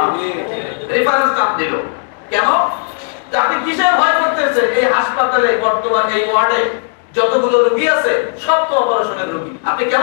রেফারেন্স নাম দিল। কেন? আপনি কিসের ভয় করতেছেন? এই হাসপাতালে বর্তমানে এই ওয়ার্ডে যতগুলো রোগী আছে সব তো অপারেশনের রোগী, আপনি কেন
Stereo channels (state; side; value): silent; right; digital silence